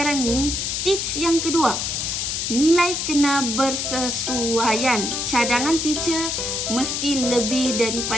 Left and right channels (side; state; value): left; noise; hiss, 1 dB below the sound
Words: ni tips yang kedua, nilai kena bersesuaian. Cadangan teacher mesti lebih